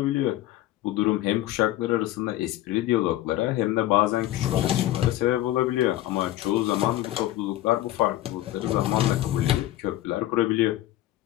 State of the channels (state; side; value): quieter; right; 14.7 dB